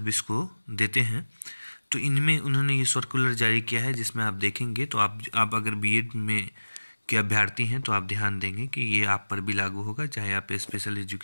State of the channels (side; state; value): both; inverted; correlation -1.00